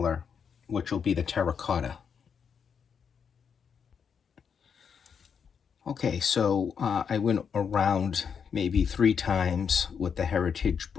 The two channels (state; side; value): quieter; right; 6.8 dB